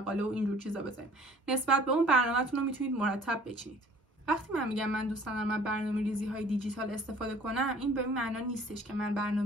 و اینجور چیزا بذاریم. نسبت به اون برنامه‌تون رو میتونید مرتب بچینید. وقتی من میگم من دوست دارم من برنامه‌ریزی های دیجیتال استفاده کنم، این به این معنا نیستش که من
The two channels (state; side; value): normal; both; correlation 0.52